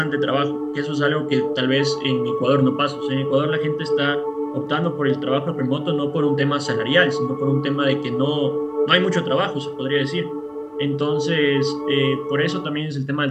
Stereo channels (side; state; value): both; identical; correlation 1.00